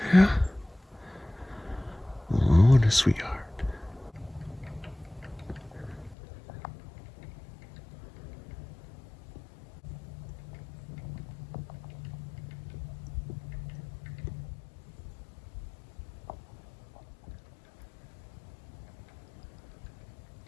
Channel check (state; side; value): drops out; right; at 6.2 s